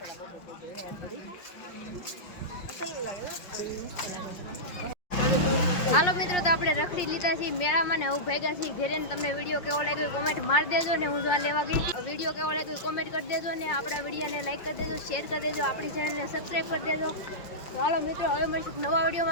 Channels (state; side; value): late; right; 5.6 ms